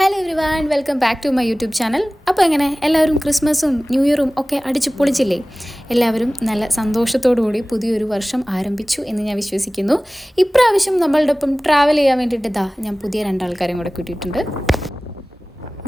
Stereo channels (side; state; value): both; normal; correlation 0.98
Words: Hello everyone, welcome back to my YouTube channel. അപ്പോൾ എങ്ങനെ എല്ലാവരും ക്രിസ്മസും ന്യൂ ഇയറും ഒക്കെ അടിച്ചു പൊളിച്ചില്ലേ? എല്ലാവരും നല്ല സന്തോഷത്തോടുകൂടി പുതിയൊരു വർഷം ആരംഭിച്ചു എന്ന് ഞാൻ വിശ്വസിക്കുന്നു. ഇപ്രാവശ്യം നമ്മളുടെ ഒപ്പം ട്രാവൽ ചെയ്യാൻ വേണ്ടിയിട്ട് ഞാൻ പുതിയ രണ്ടാൾക്കാരെയും കൂടെ കൂട്ടിയിട്ടുണ്ട്.